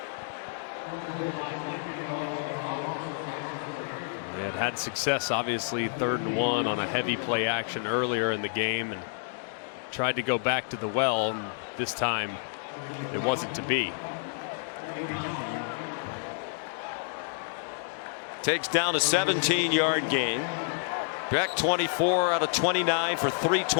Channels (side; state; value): right; silent; digital silence